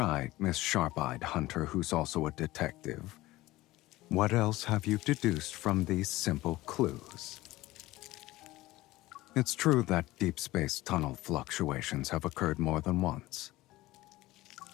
Miss Sharp-Eyed Hunter, who's also a detective. What else have you deduced from these simple clues? It's true that deep space tunnel fluctuations have occurred more than once.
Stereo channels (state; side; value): quieter; right; 18.1 dB